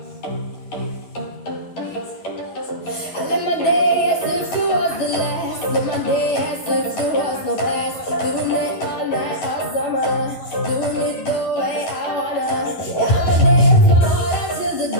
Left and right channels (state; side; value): late; right; 11 ms